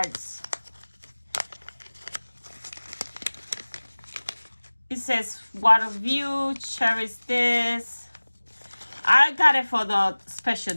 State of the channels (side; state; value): both; inverted; correlation -1.00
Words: It says water view, cherish this. I got it for the special